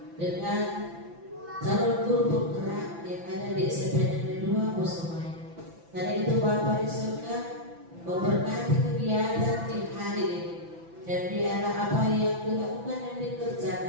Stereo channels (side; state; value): left; late; 5.9 ms